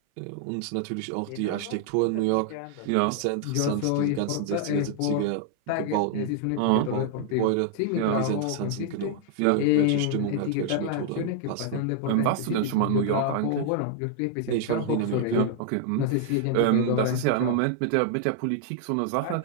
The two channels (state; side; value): different; both; correlation -0.01